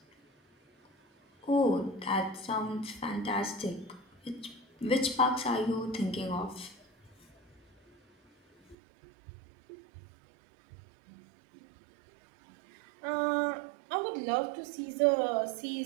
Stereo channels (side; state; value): left; drops out; at 8.8 s